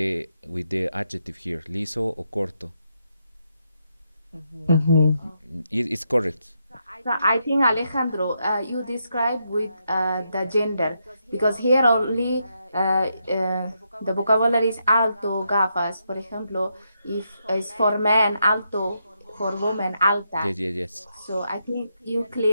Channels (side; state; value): both; inverted; correlation -0.81